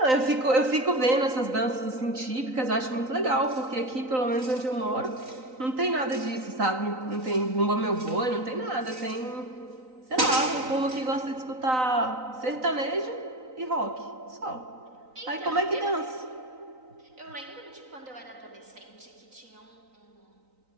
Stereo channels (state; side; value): late; left; 3.9 ms